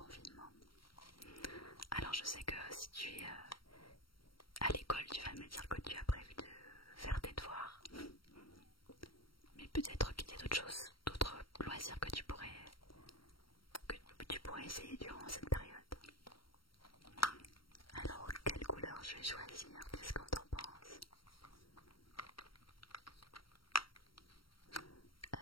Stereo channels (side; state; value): right; late; 0.74 ms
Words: Alors je sais que si tu es à l'école, tu vas me dire que tu as prévu de faire tes devoirs, mais peut-être qu'il y a d'autres choses, d'autres loisirs que tu pourrais essayer durant cette période. Alors quelle couleur je vais choisir? Qu'est-ce qu'on t'en pense?